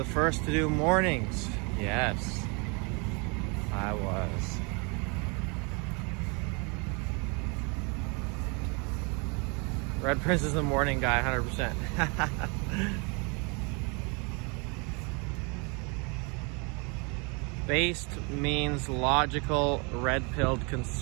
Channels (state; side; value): quieter; left; 32.3 dB